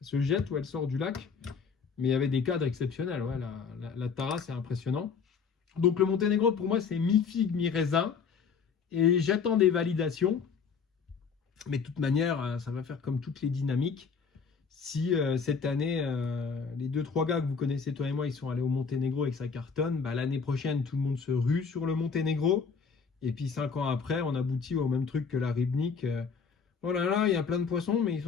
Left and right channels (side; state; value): right; quieter; 5.8 dB